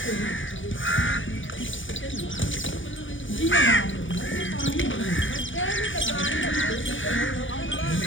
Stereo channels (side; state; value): right; late; 0.56 ms